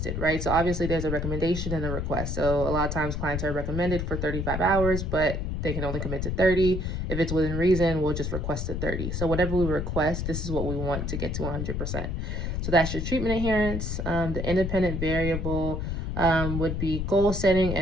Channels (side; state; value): left; noise; rumble, 2 dB below the sound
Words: right? So obviously there's a recommendation and a request. So a lot of times clients are recommended for 35 hours, but they can only commit to 30. If it's within reason, we'll just request the 30. So whatever we request, this is what we want to get to 100%. So that's your treatment adherence. The independent variable would be goal setting